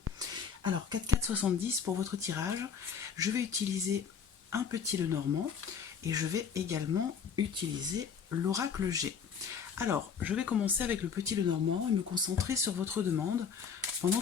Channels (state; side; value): quieter; right; 6.7 dB